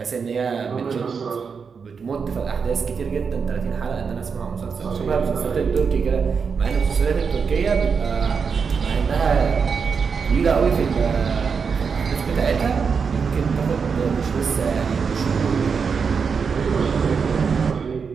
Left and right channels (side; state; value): left; quieter; 5.8 dB